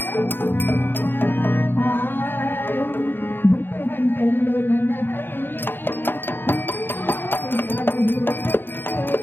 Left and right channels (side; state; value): right; late; 0.10 ms